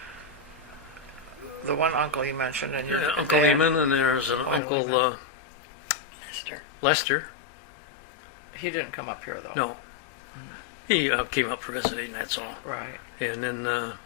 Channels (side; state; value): right; drops out; at 4.6 s